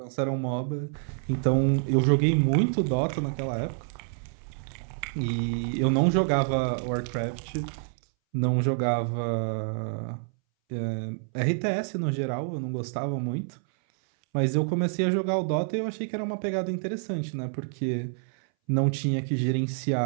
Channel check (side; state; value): left; silent; 60 dB below the other